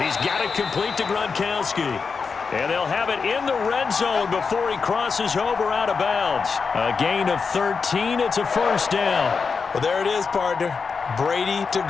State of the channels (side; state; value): right; quieter; 5.2 dB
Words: got it complete to Gronkowski. And they'll have it in the red zone before he crosses over out of bounds. A gain of 13. It's a 1st down. Well, there it is, partner. Brady to